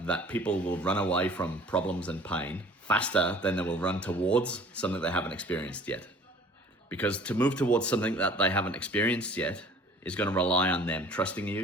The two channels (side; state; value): both; normal; correlation 0.50